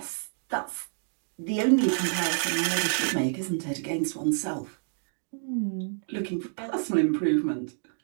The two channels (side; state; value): left; silent; 59 dB below the other